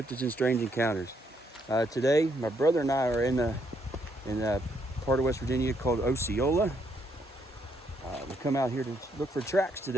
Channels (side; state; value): both; normal; correlation 0.74